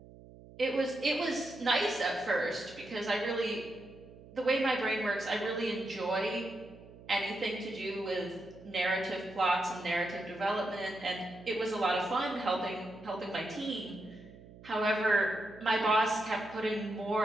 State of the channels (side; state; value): right; noise; hum, 19 dB below the sound